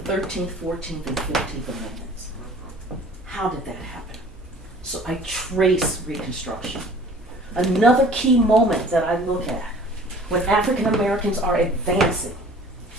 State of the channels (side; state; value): both; normal; correlation 0.49